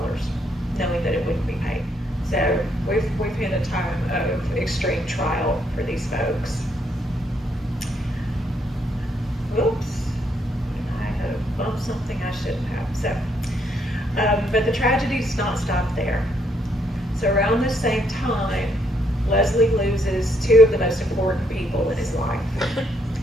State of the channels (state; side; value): normal; both; correlation 0.73